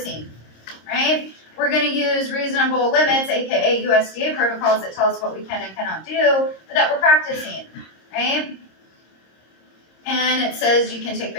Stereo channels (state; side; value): late; right; 26 ms